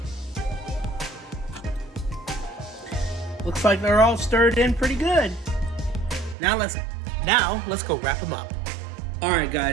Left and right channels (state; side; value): drops out; left; at 6.4 s